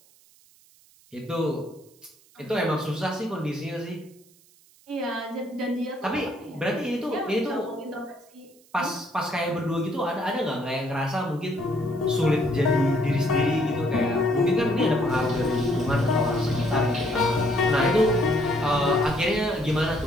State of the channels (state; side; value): noise; right; hiss, 29 dB below the sound